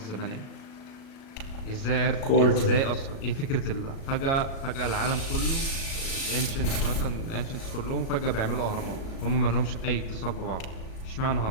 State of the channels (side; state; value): right; late; 37 ms